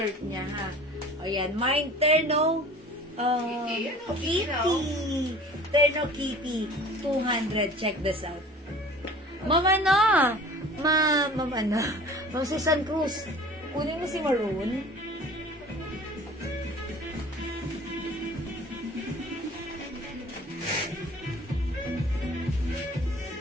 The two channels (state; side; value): normal; both; correlation 0.45